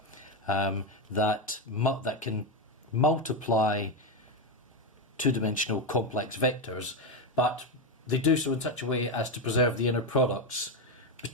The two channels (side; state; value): both; normal; correlation 0.10